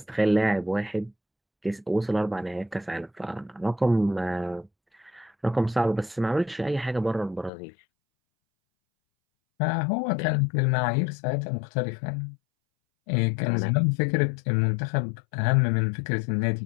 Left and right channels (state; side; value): drops out; right; at 7.5 s